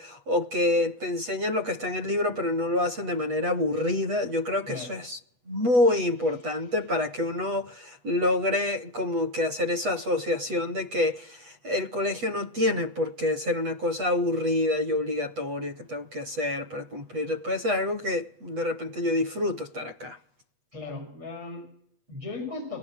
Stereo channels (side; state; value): left; late; 8.2 ms